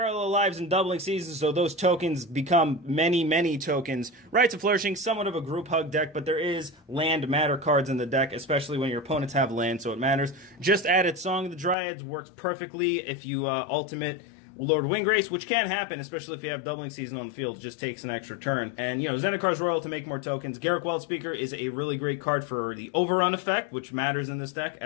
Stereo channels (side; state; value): right; drops out; at 11.8 s